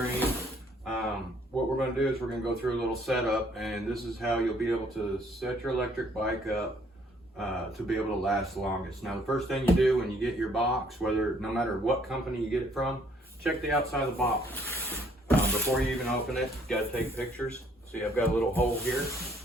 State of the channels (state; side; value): normal; both; correlation 0.64